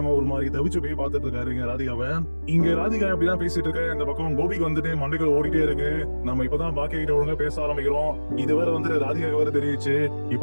ஒரு மாதிரி தவிச்சு போய் பார்த்துட்டு இருக்காரு இங்க ராதிகாவை. இங்க ராதிகா இப்படிதான் பேசிட்டு இருக்க, இந்த பக்கம் கோபிக்கு வந்துட்டு மண்டைகள் ஓடிட்டே இருக்கு. நம்ம இப்பதான் பாக்கிய கிட்ட ஒழுங்கா பேச ஆரம்பிக்கிறோம். இதுவரை வந்து ராதிகா வேற தெரியுச்சு. இப்ப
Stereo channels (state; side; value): inverted; both; correlation -1.00